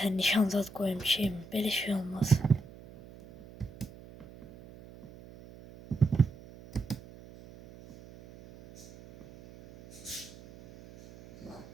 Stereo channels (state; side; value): noise; right; hum, 19 dB below the sound